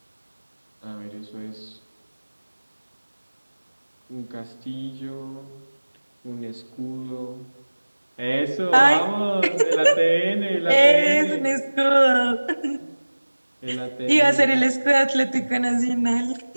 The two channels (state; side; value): inverted; both; correlation -1.00